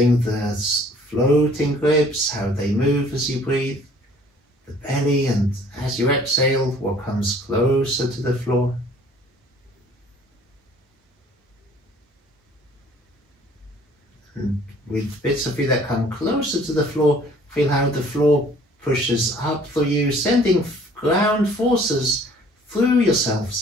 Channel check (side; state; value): both; normal; correlation 0.55